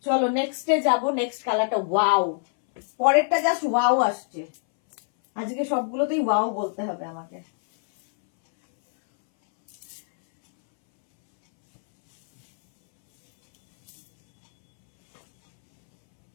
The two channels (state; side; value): silent; right; 63 dB below the other